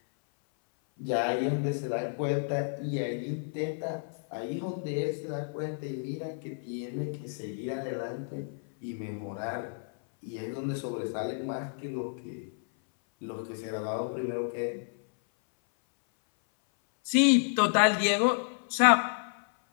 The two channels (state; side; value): silent; right; 57 dB below the other